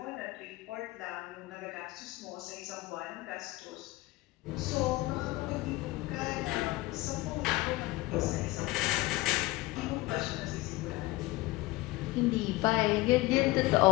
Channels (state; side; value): quieter; right; 20.1 dB